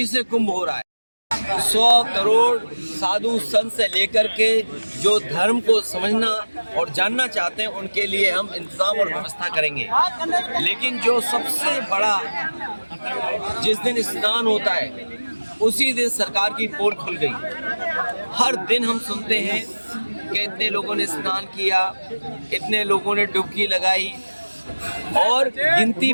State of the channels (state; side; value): inverted; both; correlation -1.00